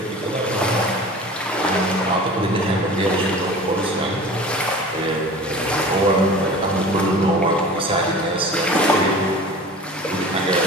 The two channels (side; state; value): both; normal; correlation 0.39